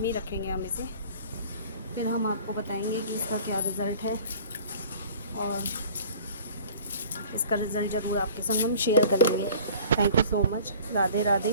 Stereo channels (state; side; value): inverted; both; correlation -0.47